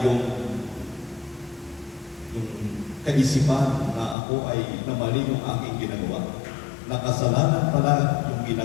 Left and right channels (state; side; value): drops out; right; at 4.2 s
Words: yung kaisipan na ako ay namali yung aking ginagawa. Nakasalanan pala yung